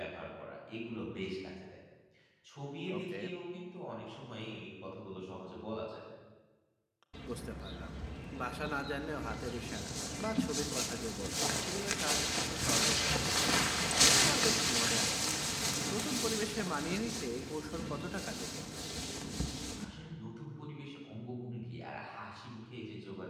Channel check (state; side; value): identical; both; correlation 1.00